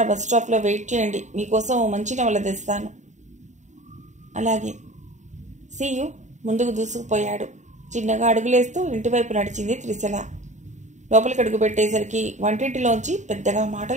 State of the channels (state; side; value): late; left; 0.34 ms